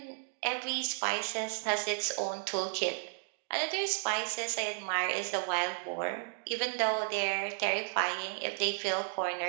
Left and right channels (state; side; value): silent; left; 55 dB below the other